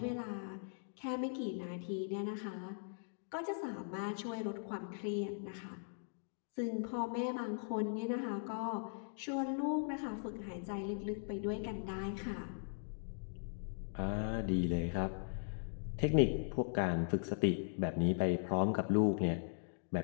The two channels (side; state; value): right; silent; digital silence